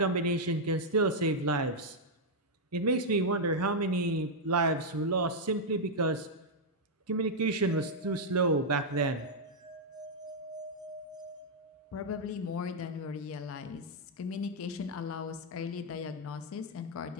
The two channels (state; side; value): normal; both; correlation -0.04